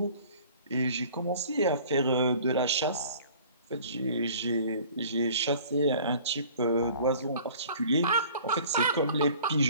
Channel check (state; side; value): inverted; both; correlation -0.49